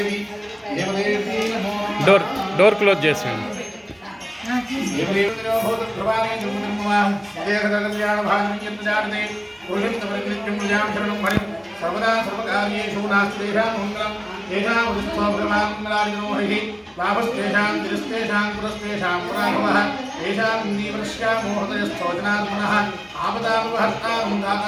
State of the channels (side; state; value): both; identical; correlation 1.00